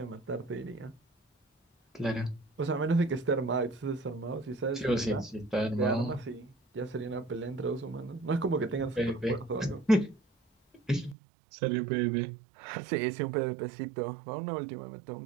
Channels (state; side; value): drops out; left; at 11.2 s